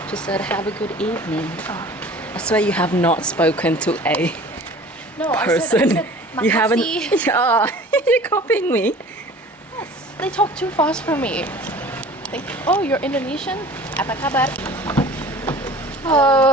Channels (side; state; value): both; normal; correlation 0.44